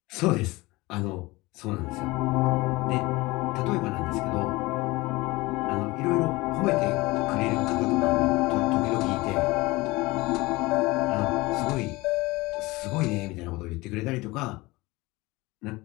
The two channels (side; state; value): right; quieter; 21.7 dB